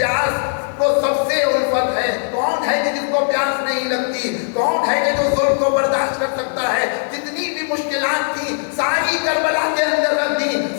کو سب سے الفت ہے. کون ہے کہ جس کو پیاس نہیں لگتی؟ کون ہے کہ جو ظلم کو برداشت کر سکتا ہے؟ جتنی بھی مشکلات تھی ساری کربلا کے اندر رکھ دی،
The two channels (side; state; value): right; silent; digital silence